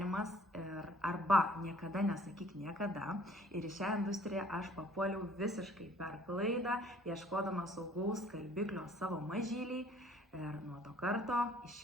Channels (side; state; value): both; normal; correlation 0.57